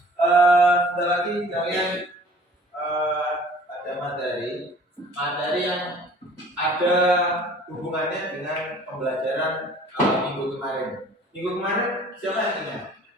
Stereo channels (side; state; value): both; normal; correlation 0.50